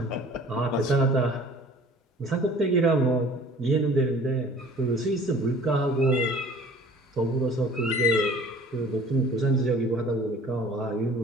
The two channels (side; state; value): both; normal; correlation 0.49